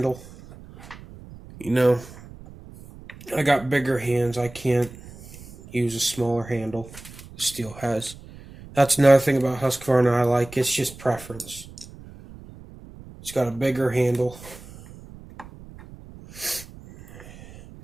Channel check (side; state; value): right; noise; rumble, 18 dB below the sound